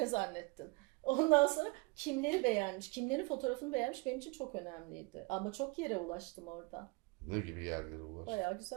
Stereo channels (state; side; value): quieter; left; 27.2 dB